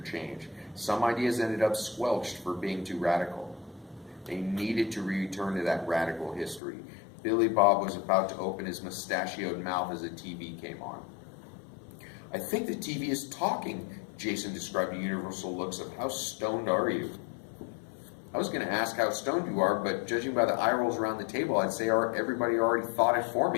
Some ideas ended up squelched for being too radical. They needed to return to that radical history. Billy Bob was about to open his mustachioed mouth as the TV came on. I think the TV is talking, Jason described the universal looks of, how stoned are you? I was going to ask how stoned you are, but judging by the eye rolls around the table, I'd say everybody already thought it for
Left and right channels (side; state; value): right; drops out; at 6.6 s